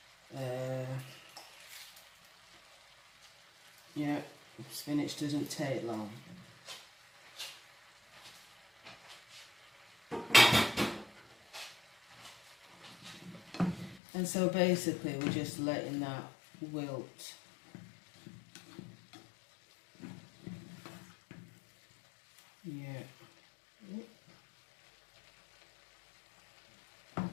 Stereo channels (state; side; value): drops out; right; at 14.0 s